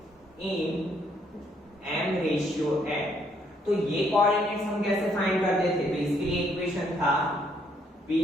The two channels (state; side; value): normal; both; correlation 0.70